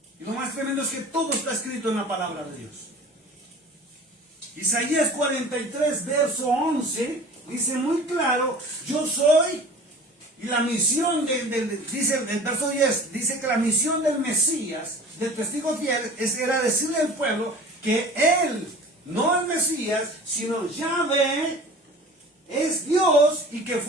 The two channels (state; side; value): normal; both; correlation 0.42